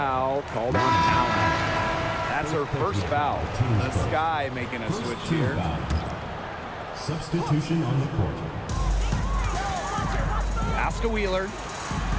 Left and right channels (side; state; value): both; identical; correlation 1.00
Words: called on Allen. That's her first foul. The Sky making a switch here. Substitution on the court. Pass to Wheeler.